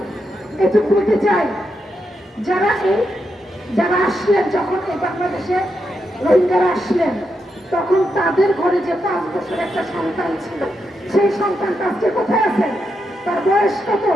এটুকু বলতে চাই, যারা আসলেন, যখন এই বাংলাদেশে রোহিঙ্গারা আসলেন, তখন তাদের ঘরে যে 5 বছরের একটা সন্তান ছিল, সেই সন্তানটা আজকে কোথায় আছেন? তার বয়স কত?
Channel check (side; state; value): both; normal; correlation 0.84